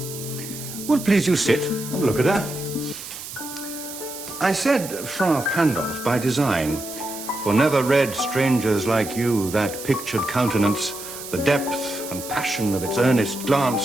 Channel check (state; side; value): noise; right; hiss, 11 dB below the sound